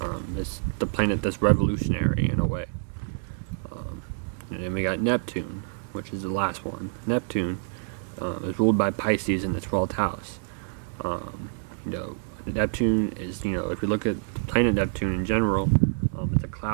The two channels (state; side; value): silent; left; 60 dB below the other